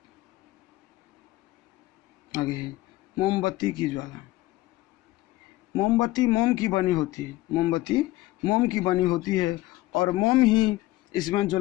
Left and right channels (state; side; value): quieter; right; 17.4 dB